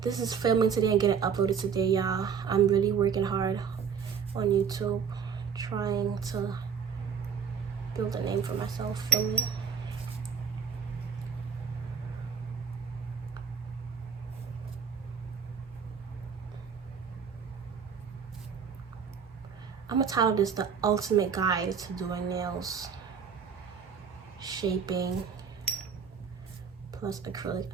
This is filming today and getting uploaded today, y'all. I'm really working hard on YouTube, trying to build a name for myself. Filming. I'm gonna title this The Ultimate Guide to Doing Nails, Shaping, plus Acrylic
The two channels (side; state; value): left; quieter; 6.7 dB